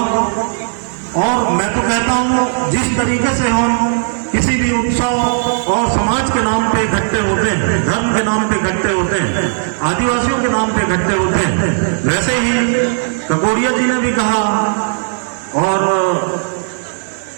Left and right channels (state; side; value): silent; left; digital silence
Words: और मैं तो कहता हूँ जिस तरीके से हम किसी भी उत्सव और समाज के नाम पे इकट्ठे होते हैं, धर्म के नाम पे इकट्ठे होते हैं, आदिवासियों के नाम पे इकट्ठे होते हैं, वैसे ही ककोरिया जी ने भी कहा, और